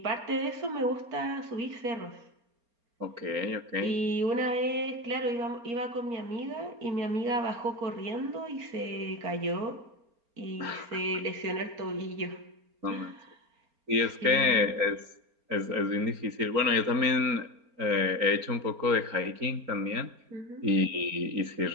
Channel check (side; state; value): left; late; 4.3 ms